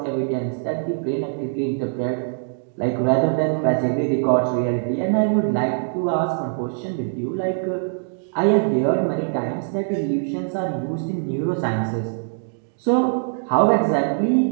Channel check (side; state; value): left; silent; digital silence